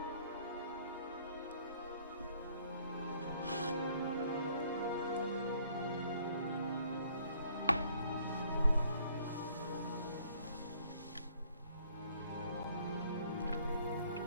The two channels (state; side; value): inverted; both; correlation -0.62